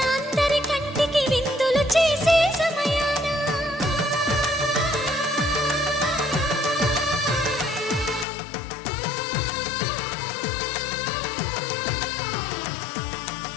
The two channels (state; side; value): drops out; right; at 8.2 s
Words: అందరి కంటికి విందులు చేసే సమయాన